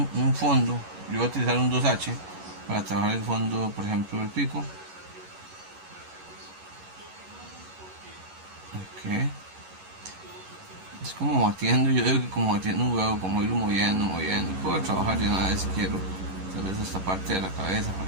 fondo. Yo voy a utilizar un 2H para trabajar el fondo, por ejemplo, del pico. Es como batiendo, yo digo que como batiendo un huevo, como irlo moviendo, moviendo. Puedo trabajar de una vez si quiero, tal vez esta parte de la cabeza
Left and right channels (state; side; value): late; left; 11 ms